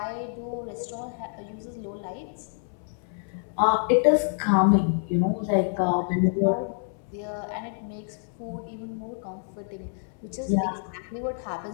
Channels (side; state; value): right; silent; 60 dB below the other